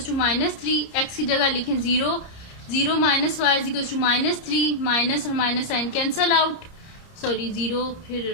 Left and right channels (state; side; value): late; right; 30 ms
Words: -3, x की जगह लिखें 0, 0 minus y is equal to -3, minus और minus sign cancel out, sorry 0 फिर